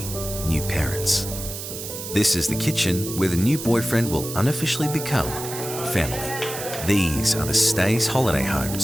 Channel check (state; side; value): noise; right; hiss, 8 dB below the sound